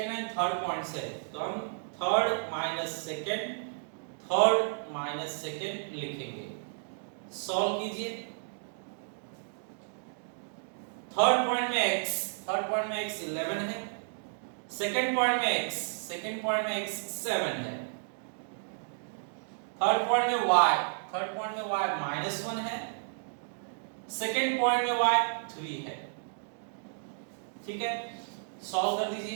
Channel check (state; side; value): silent; left; digital silence